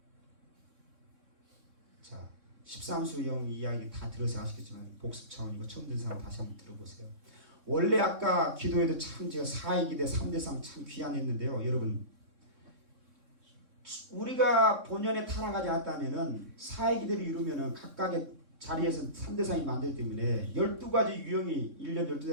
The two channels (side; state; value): left; late; 3.6 ms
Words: 자, 13수영 이야기 다 들어서 아시겠지만 복습 차원이고 처음 듣는 사람 다시 한번 들어보세요. 원래 아까 기도에도 참 제가 4위기대 3대상 참 귀한했는데요. 여러분 우리가 본연에 타락하지 않았다면은 4위기대를 이루면은 각각의 자리에서 3대상이 만들기 때문에 12가지 유형이 1년 12대